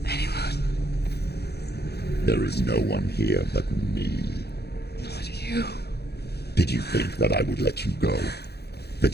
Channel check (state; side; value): late; right; 0.48 ms